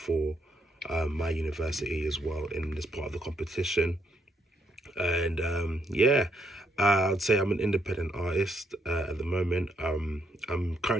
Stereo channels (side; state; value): both; normal; correlation 0.74